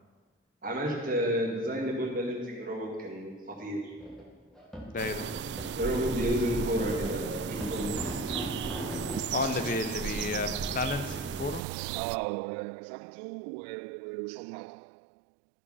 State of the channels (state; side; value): drops out; left; at 11.6 s